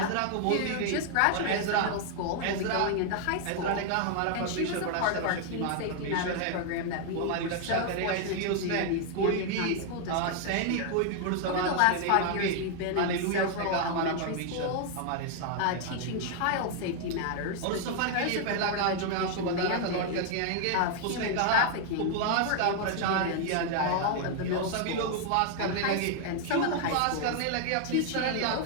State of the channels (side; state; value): both; different; correlation 0.00